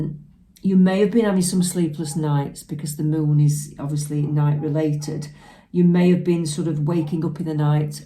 may have been having some sleepless nights because the moon is obviously night related. You may have been sort of waking up in the night,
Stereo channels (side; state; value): both; identical; correlation 1.00